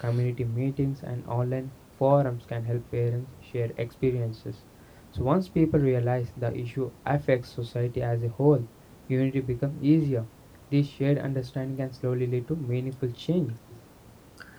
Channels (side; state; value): both; identical; correlation 1.00